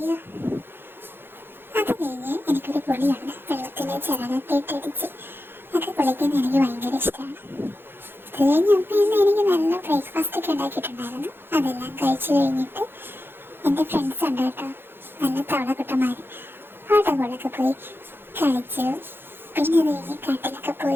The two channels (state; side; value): late; left; 0.10 ms